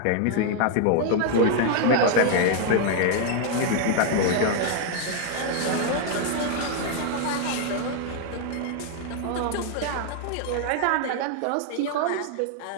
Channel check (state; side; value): different; both; correlation 0.00